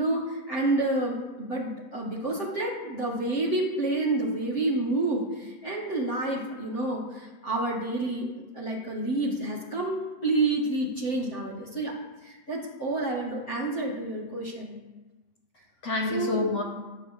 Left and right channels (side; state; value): right; late; 7.6 ms